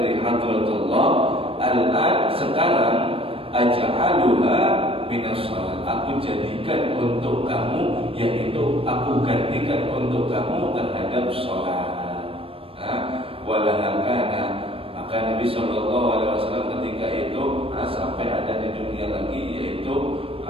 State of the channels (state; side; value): late; left; 0.27 ms